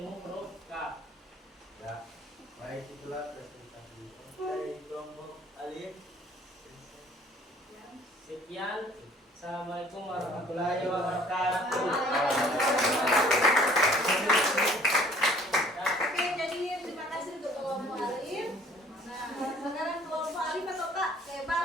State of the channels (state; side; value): normal; both; correlation 0.54